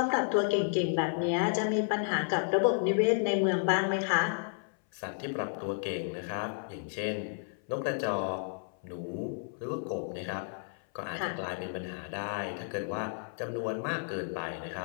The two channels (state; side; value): silent; right; 56 dB below the other